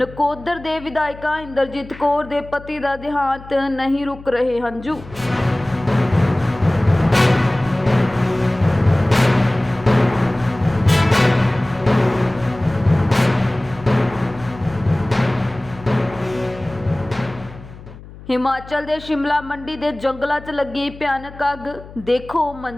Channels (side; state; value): left; noise; hum, 17 dB below the sound